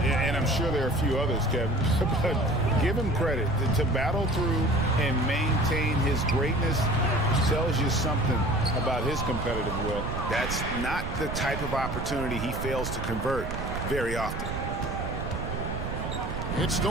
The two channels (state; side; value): noise; right; rumble, 5 dB below the sound